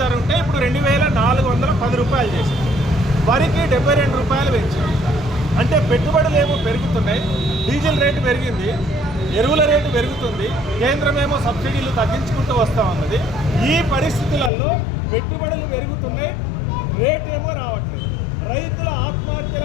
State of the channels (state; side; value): drops out; right; at 14.5 s